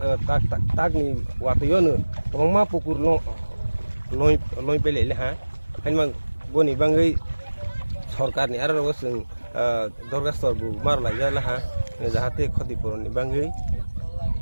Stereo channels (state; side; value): inverted; both; correlation -1.00